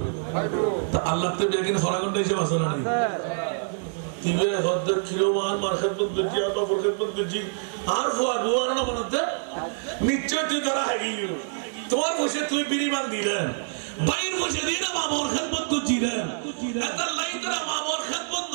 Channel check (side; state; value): left; silent; digital silence